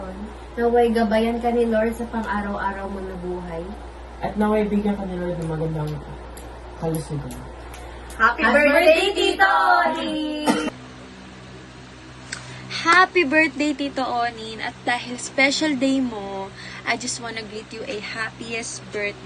Naway gabayan ka ni Lord sa pang-araw-araw mo na buhay. At naway bigyan ka ni Lord ng magandang kalusugan. Happy birthday, Tito! Happy birthday, Tito Onin! At dahil special day mo, I just wanna greet you a happiest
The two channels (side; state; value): both; identical; correlation 1.00